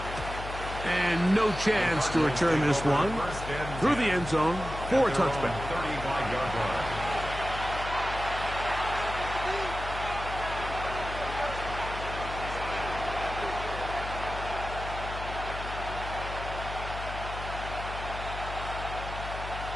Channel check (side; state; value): left; noise; hum, 8 dB below the sound